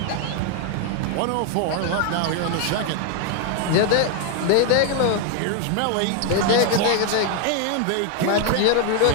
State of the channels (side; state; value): both; different; correlation 0.01